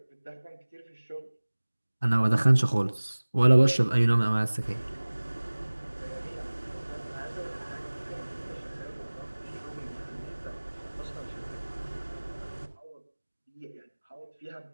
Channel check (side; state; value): both; inverted; correlation -1.00